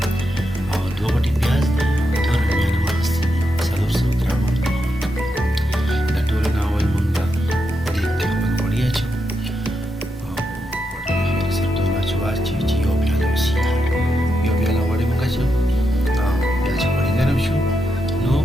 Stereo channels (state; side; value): normal; both; correlation 0.84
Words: او دوه غټې پیاز دي، دوه رومیان هم اخیستي دي، 400 ګرامه. د ټولو نه اول مونږ دیګ کې خپل غوړي اچوو او غوړي سره ټول واچوو چې یو پیاله وسیږي. یو پیاله غوړي مونږ اچوو او بیا چې غوړي ګرم شو نو